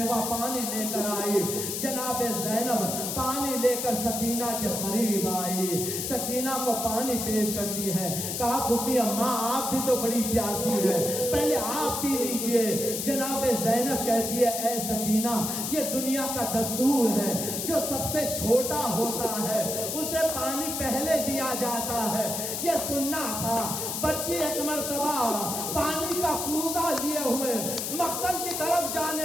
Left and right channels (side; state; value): left; noise; hiss, 3 dB below the sound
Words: پانی لے کر آئی، جناب زینب پانی لے کر سکینہ کے قریب آئی، سکینہ کو پانی پیش کرتی ہے، کہا پھوپھی اماں آپ بھی تو بڑی پیاسی ہے، پہلے آپ پی لیجئے۔ جناب زینب کہتی ہے اے سکینہ یہ دنیا کا دستور ہے، جو سب سے چھوٹا ہوتا ہے اسے پانی پہلے دیا جاتا ہے، یہ سننا تھا۔ بچی ایک مرتبہ پانی کا کوزہ لیے ہوئے مقتل کی طرف